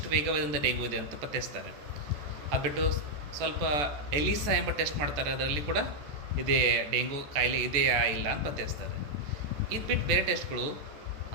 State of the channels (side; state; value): left; late; 14 ms